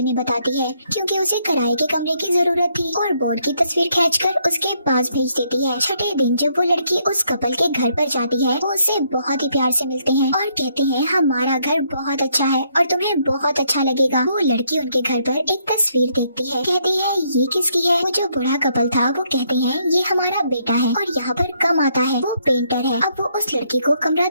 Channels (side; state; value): both; inverted; correlation -0.72